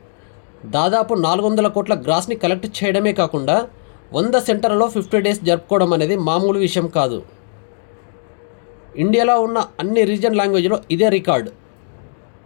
దాదాపు 400 కోట్ల గ్రాస్ని కలెక్ట్ చేయడమే కాకుండా 100 సెంటర్లలో 50 డేస్ జరుపుకోవడం అనేది మామూలు విషయం కాదు. ఇండియాలో ఉన్న అన్ని రీజన్ లాంగ్వేజ్లో ఇదే రికార్డ్.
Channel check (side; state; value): right; silent; digital silence